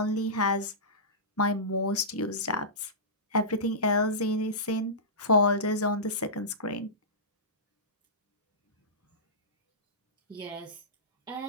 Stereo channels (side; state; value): both; normal; correlation -0.20